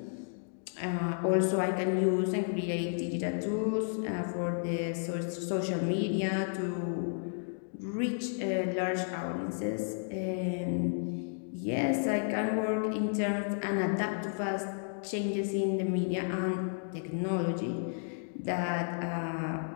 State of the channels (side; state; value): right; silent; digital silence